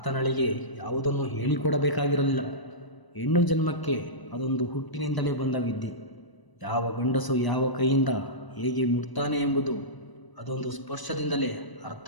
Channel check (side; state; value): right; late; 1.0 ms